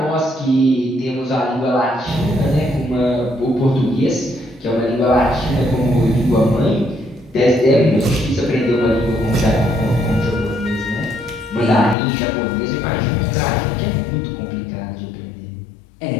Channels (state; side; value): drops out; right; at 12.0 s